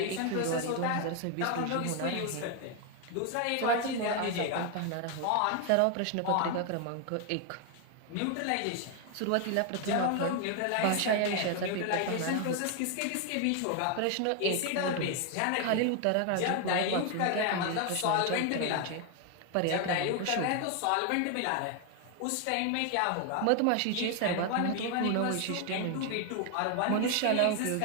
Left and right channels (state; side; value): different; both; correlation 0.01